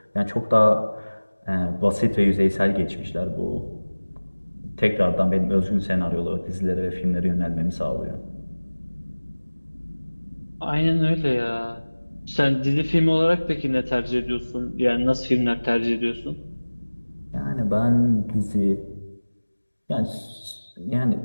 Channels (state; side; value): inverted; both; correlation -1.00